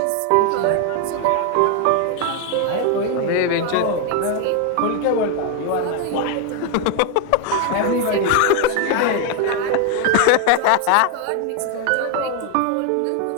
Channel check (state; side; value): different; both; correlation 0.01